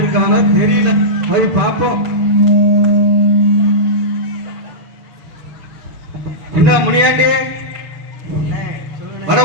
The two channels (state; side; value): late; left; 7.1 ms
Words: தெரியல. போய் பார்ப்போம். என்ன முனியாண்டி வர